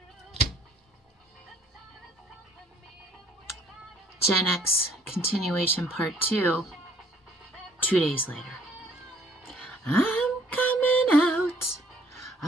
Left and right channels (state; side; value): normal; both; correlation 0.61